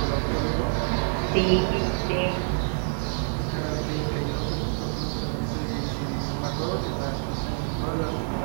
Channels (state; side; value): silent; left; 60 dB below the other